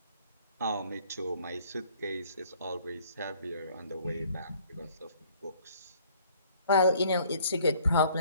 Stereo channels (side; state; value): both; inverted; correlation -0.58